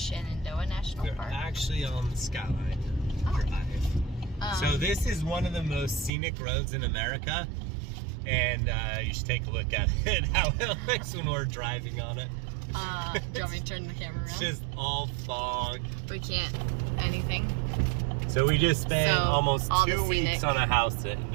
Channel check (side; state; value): left; drops out; at 6.1 s